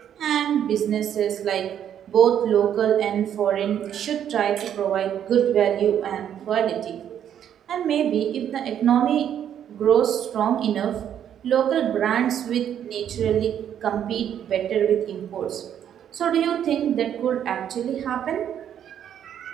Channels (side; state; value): left; quieter; 9.6 dB